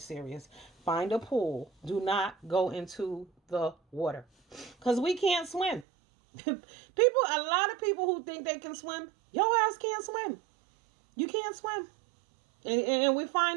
Find a pool. Do not go into the water. Because we can't swim. A lot of people who think they can swim, your ass can't swim. You can't swim. And we're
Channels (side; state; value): left; drops out; at 5.9 s